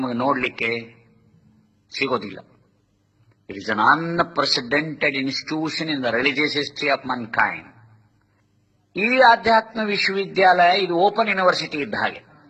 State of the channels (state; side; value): identical; both; correlation 1.00